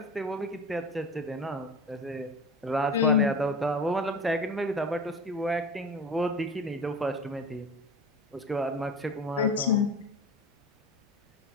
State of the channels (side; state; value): both; normal; correlation 0.33